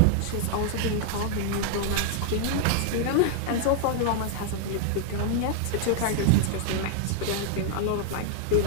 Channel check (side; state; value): both; different; correlation 0.00